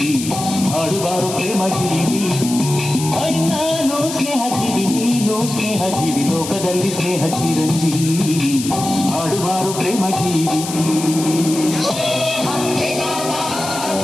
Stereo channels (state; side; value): noise; left; hiss, 8 dB below the sound